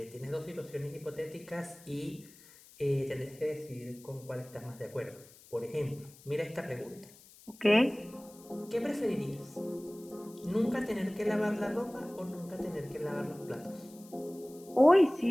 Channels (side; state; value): left; noise; hiss, 23 dB below the sound